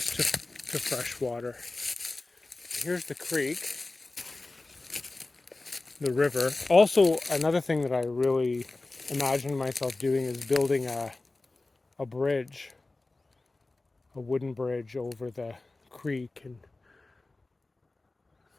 to fresh water. Here's the creek, the river. Also, another thing that I really imagine myself doing is building a bridge, a wooden bridge over the creek, and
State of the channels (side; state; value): right; quieter; 3.2 dB